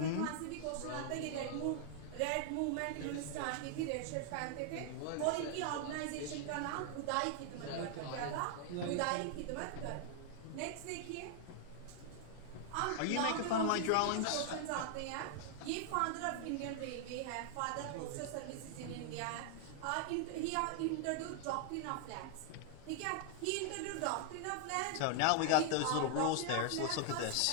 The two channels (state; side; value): different; both; correlation 0.00